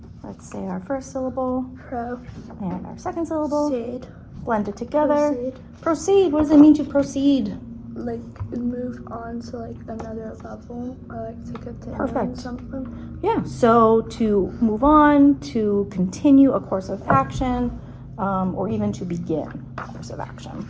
Let's say our first syllable Pro. and our second syllable. Seed. Blend it together. Proceed. Proceed, what does it mean to proceed? Like move on to like another level, or like to continue Perfect. something. Yeah, so to move on, to continue a course of action, or even to begin a course of action.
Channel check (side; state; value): both; identical; correlation 1.00